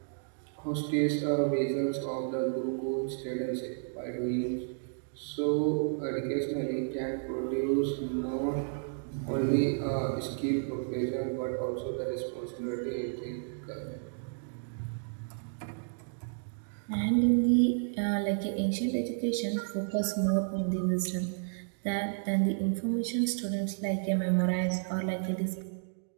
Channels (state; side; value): silent; left; digital silence